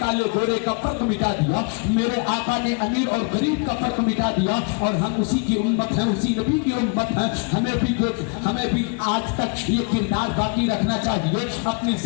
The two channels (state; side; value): quieter; right; 34.1 dB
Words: گورے کا فرق مٹا دیا، میرے آقا نے امیر اور غریب کا فرق مٹا دیا، اور ہم اسی کی امت ہیں، اسی نبی کی امت ہیں. ہمیں بھی آج تک یہ کردار باقی رکھنا چاہیے، اپنی